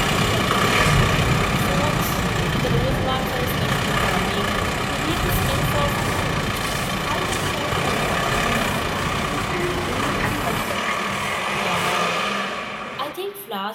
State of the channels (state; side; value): identical; both; correlation 1.00